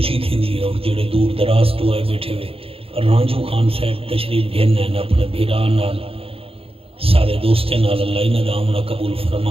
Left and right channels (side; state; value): left; late; 0.27 ms